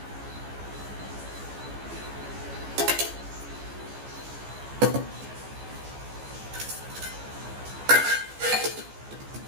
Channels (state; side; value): late; left; 14 ms